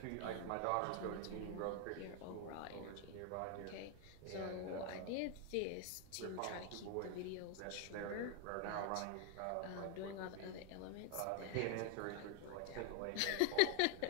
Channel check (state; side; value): different; both; correlation 0.01